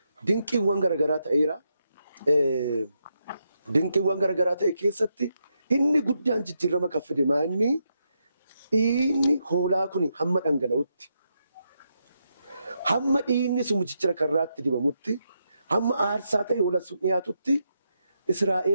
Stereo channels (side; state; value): both; inverted; correlation -0.82